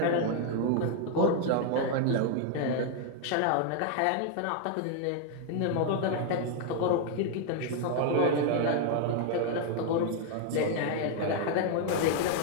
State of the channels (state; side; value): different; both; correlation 0.00